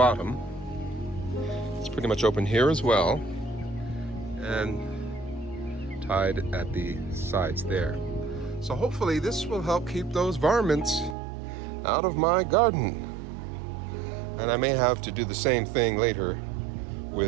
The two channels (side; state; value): left; drops out; at 11.2 s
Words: It's pretty much open here as well, and tied at the sides there. So hopefully this will help keep those varmints out of my garden. And I may have to do the same thing later